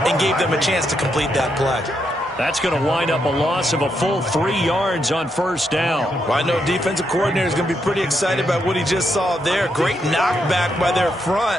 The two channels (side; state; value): both; normal; correlation 0.80